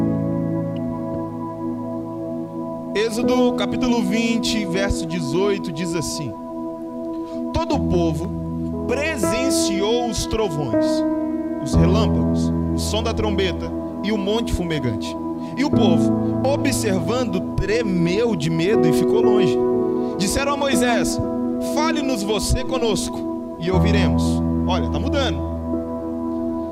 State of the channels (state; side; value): identical; both; correlation 1.00